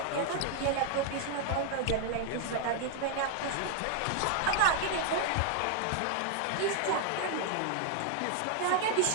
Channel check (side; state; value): both; different; correlation 0.00